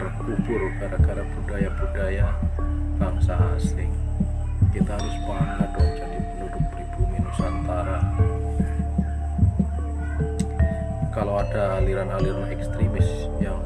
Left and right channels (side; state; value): both; identical; correlation 1.00